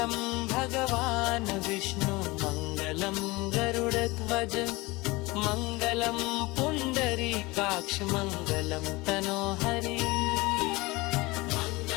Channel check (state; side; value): quieter; right; 22.7 dB